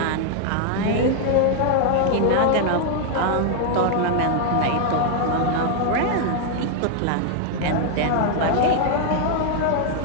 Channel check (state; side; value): different; both; correlation 0.00